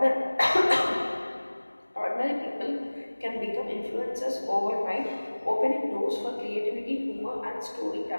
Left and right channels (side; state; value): both; inverted; correlation -1.00